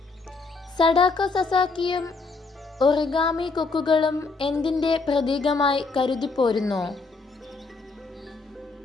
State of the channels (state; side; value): quieter; right; 4.0 dB